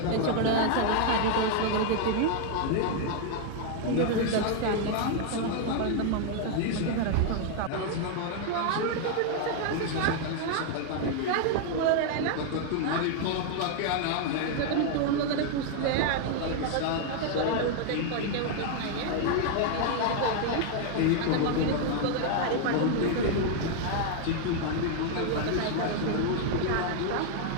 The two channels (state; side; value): different; both; correlation 0.00